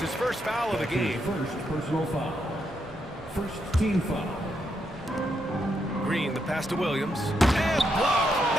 his first foul of the game. First personal foul. First team foul. Green, the pass to Williams. And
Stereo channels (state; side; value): normal; both; correlation 0.80